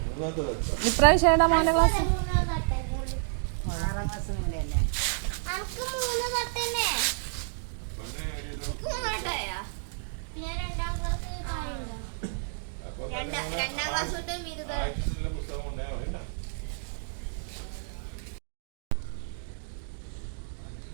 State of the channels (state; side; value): silent; left; digital silence